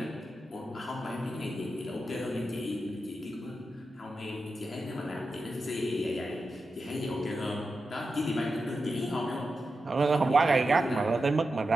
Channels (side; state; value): both; normal; correlation 0.90